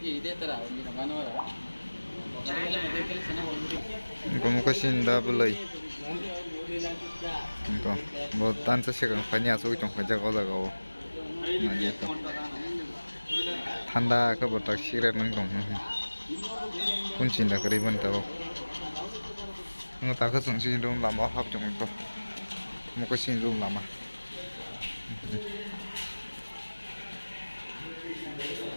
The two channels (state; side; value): inverted; both; correlation -1.00